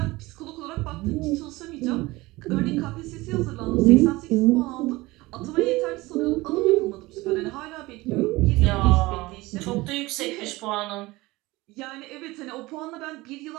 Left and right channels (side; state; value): left; quieter; 20.7 dB